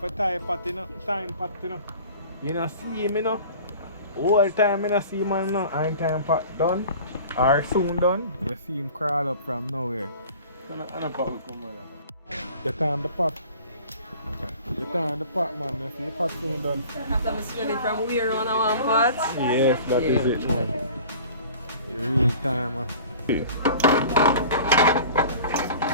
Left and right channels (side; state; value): both; inverted; correlation -0.44